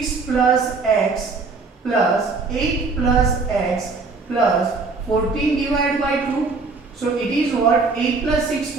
plus X plus 8 plus X plus 14 divided by 2. So it is what? 8 plus 6,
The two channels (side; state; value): left; quieter; 4.2 dB